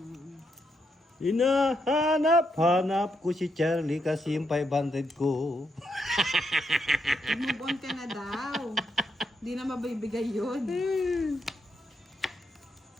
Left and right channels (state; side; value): normal; both; correlation 0.80